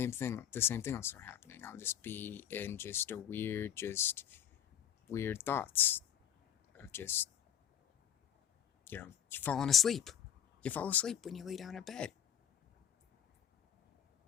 thing will start happening. I'll just be in just weird thoughts of just, you falling asleep. You fall asleep when you lay down in bed.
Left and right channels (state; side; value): quieter; right; 9.8 dB